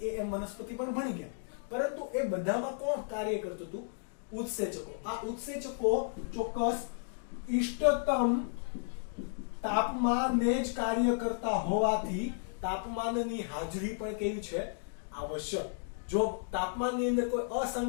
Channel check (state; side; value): silent; right; digital silence